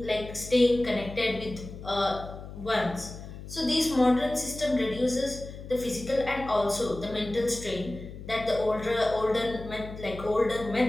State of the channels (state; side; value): noise; left; hum, 12 dB below the sound